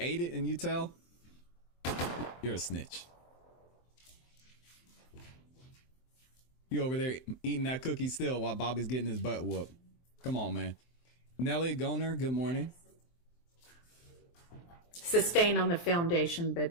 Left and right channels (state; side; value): late; right; 23 ms